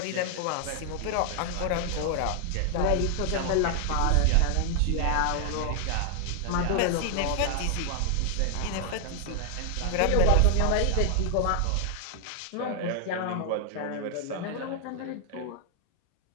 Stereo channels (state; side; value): different; both; correlation 0.00